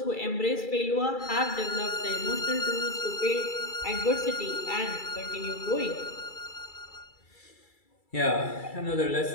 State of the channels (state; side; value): late; right; 2.3 ms